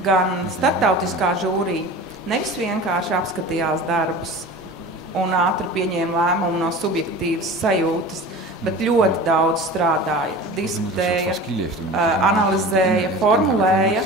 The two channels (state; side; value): normal; both; correlation 0.36